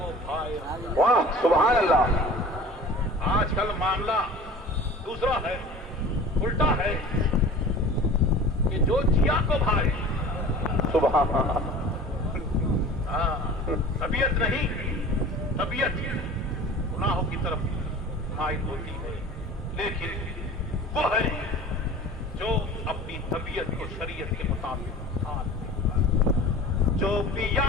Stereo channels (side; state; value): both; normal; correlation 0.41